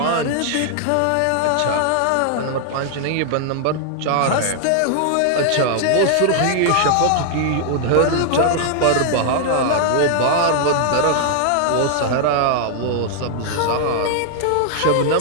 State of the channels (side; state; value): both; different; correlation -0.01